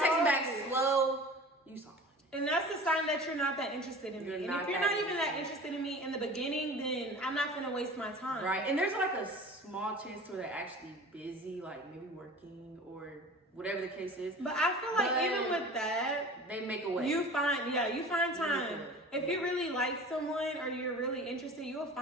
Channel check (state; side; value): normal; both; correlation 0.40